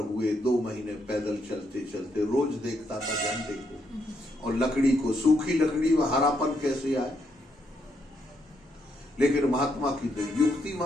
2 महीने पैदल चलते चलते। रोज देखता था झंडे को और लकड़ी को, सूखी लकड़ी में हरापन कैसे आए। लेकिन महात्मा की तो युक्ति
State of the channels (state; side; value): normal; both; correlation 0.77